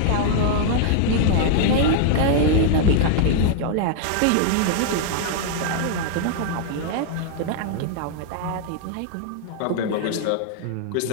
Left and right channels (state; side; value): different; both; correlation -0.01